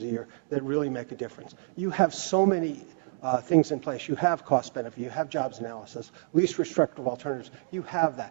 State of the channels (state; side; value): silent; left; digital silence